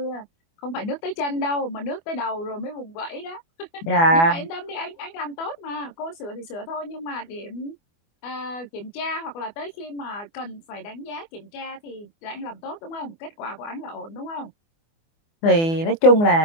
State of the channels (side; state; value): right; late; 24 ms